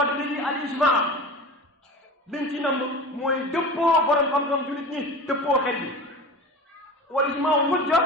li al ijmaa liñ ci nam mooy dëppoo borom xam-xam jullit ñi dëppoo xel bi wal ijmaa hujja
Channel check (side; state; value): both; normal; correlation 0.34